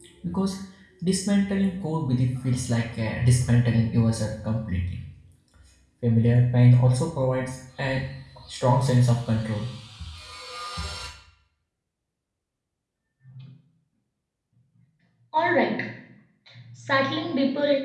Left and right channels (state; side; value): identical; both; correlation 1.00